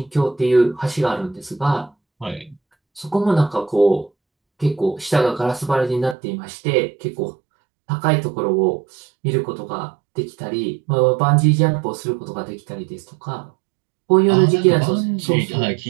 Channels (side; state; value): left; drops out; at 6.2 s